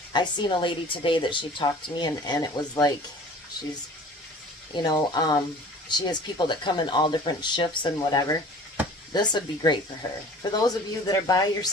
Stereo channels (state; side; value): normal; both; correlation 0.46